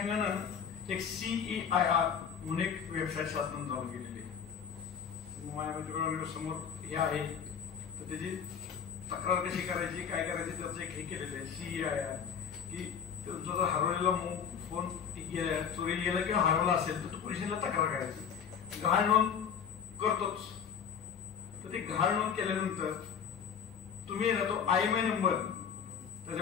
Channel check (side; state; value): right; quieter; 7.4 dB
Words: एक CEIR म्हणून एक वेबसाईट शासनाने चालू केलेली आहे. माझ्या समोर हे आहे, तर त्याची तक्रार कशी करायची, काय करायची त्याचं एक हे केलेलं आहे CEIR, की तुमचा जर हरवलेला फोन चोरीला गेला किंवा हरवला असेल तर पोलिसांना तक्रार करायची. गहाळ नोंद करतोच, तर ते गहाळ नोंद केल्यानंतर तुम्ही ना तो IMEI नंबर